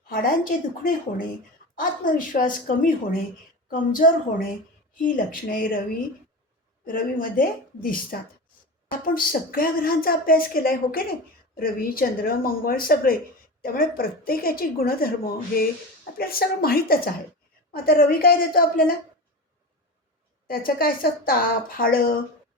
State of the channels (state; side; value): normal; both; correlation 0.26